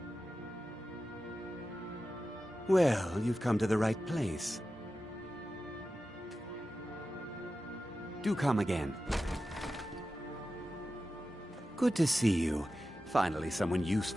Well, you've come to the right place. Do come again. Good to see you. Finally, someone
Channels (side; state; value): both; normal; correlation 0.93